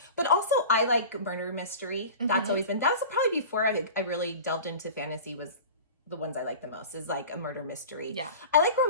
But also I like murder mystery. That's always been, that was probably before I really delved into fantasy, was the ones I like the most, is like a murder mystery. Yeah. I like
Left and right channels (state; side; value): inverted; both; correlation -0.36